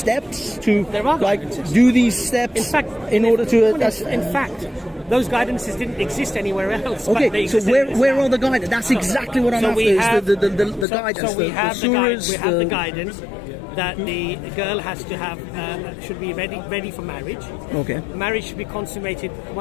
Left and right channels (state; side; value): drops out; right; at 10.9 s